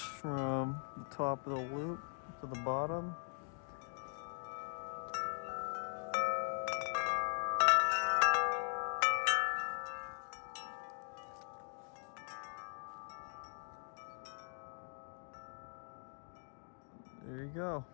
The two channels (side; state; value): right; silent; 51 dB below the other